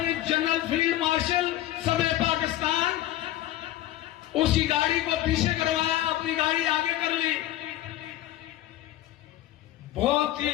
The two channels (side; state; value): right; quieter; 14.2 dB